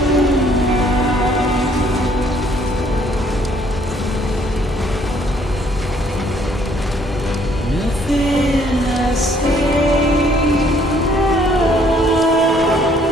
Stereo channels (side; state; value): both; normal; correlation 0.63